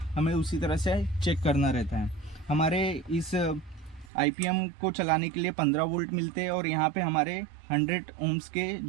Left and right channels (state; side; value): drops out; left; at 4.1 s